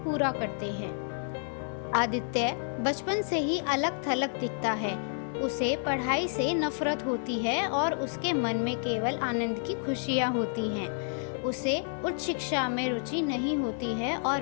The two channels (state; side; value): silent; right; 58 dB below the other